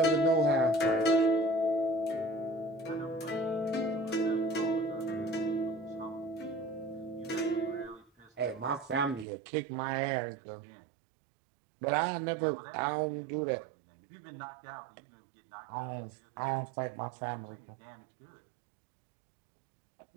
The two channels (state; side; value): drops out; left; at 9.2 s